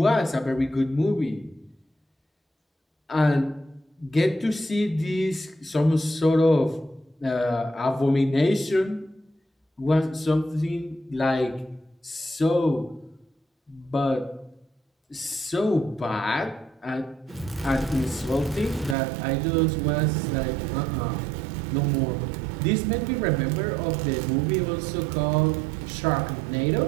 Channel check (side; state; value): left; drops out; at 18.9 s